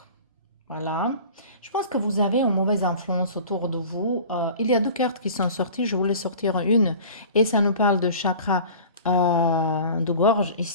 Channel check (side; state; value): both; inverted; correlation -0.42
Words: voilà. Je pense que vous avez une mauvaise influence autour de vous. Il y a deux cartes qui sont sorties. Je voulais sortir une. Et ça nous parle de chakra de gorge